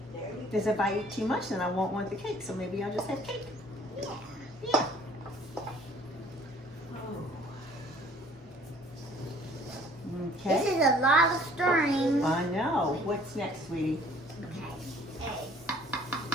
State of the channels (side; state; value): both; normal; correlation 0.55